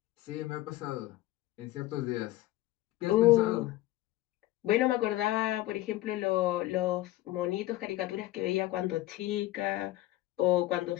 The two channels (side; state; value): right; quieter; 16.3 dB